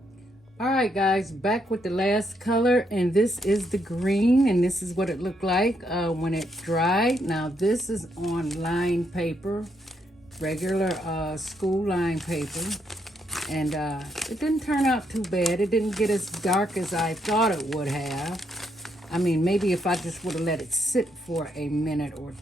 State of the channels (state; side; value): normal; both; correlation 0.76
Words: All right, guys, back with the last color. And this is the green, and this is what it looked like when it dried. Now, this is on line paper, regular school line paper. And it didn't turn out too bad. It didn't get as dark as I thought it would have. I mean, maybe if I just would have let it sit for a minute or